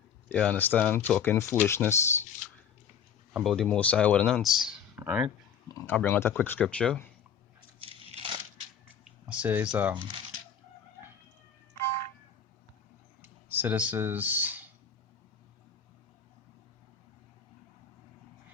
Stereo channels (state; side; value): quieter; right; 7.4 dB